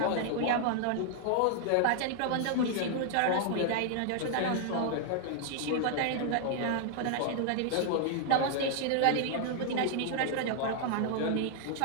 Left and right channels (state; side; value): different; both; correlation 0.00